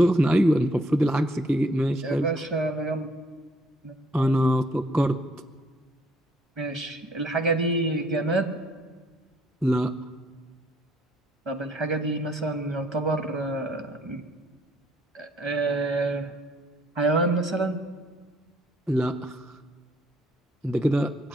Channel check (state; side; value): normal; both; correlation 0.66